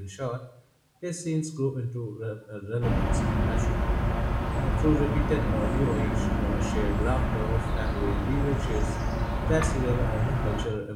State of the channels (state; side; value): identical; both; correlation 1.00